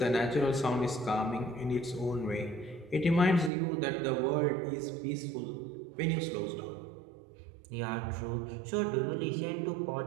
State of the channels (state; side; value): drops out; left; at 3.5 s